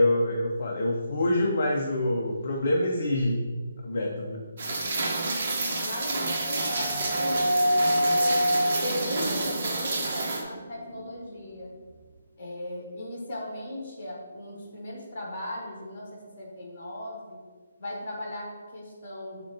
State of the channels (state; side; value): inverted; both; correlation -0.85